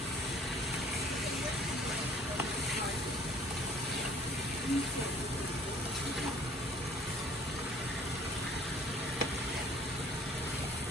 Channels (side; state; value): both; normal; correlation 0.53